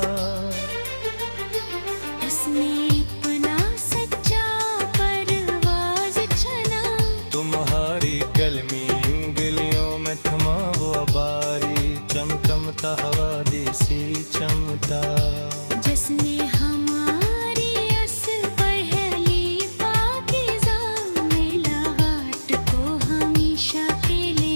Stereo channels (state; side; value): inverted; both; correlation -1.00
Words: इसमें अपना सच्चा परवाज चला। तुम्हारी कलमी उंगलियों में थमा वो बारी चमचमता हवा देसी चमता, जिसने हमारी अस पहली पाकीज़ा मिलावट को हमेशा के